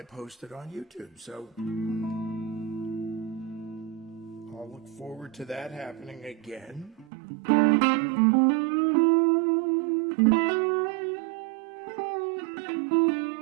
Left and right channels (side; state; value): left; drops out; at 7.1 s